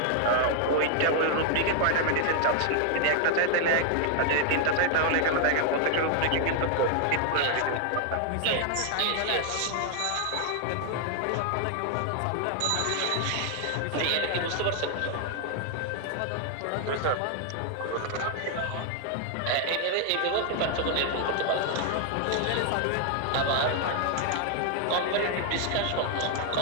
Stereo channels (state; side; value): different; both; correlation 0.00